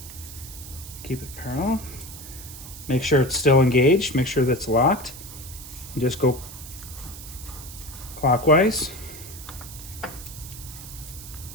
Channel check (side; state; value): right; noise; hiss, 14 dB below the sound